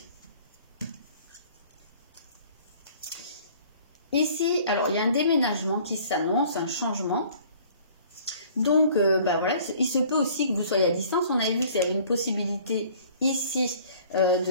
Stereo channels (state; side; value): inverted; both; correlation -0.53